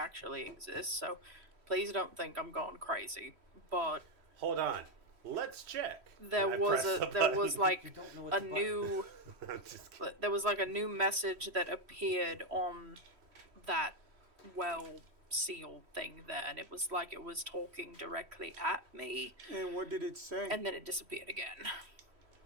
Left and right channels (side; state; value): left; late; 3.1 ms